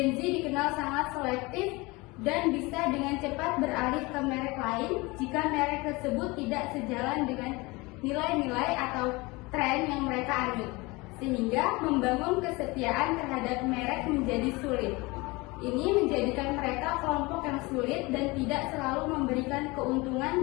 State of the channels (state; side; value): quieter; right; 24.0 dB